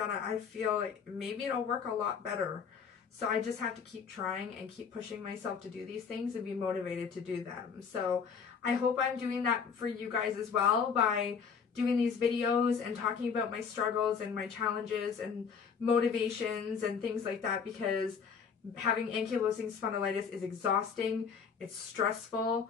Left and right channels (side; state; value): right; quieter; 6.3 dB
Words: I feel like maybe it'll work a lot better. So I just have to keep trying and keep pushing myself to do these things and be motivated to do them. So I hope I'm doing that for you guys as well by doing these videos and talking about my struggles and my challenges and motivations and things like that, because having ankylosing spondylitis is exhausting, it's stressful,